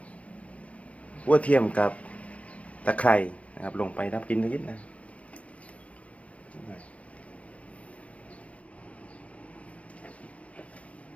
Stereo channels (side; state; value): right; late; 0.065 ms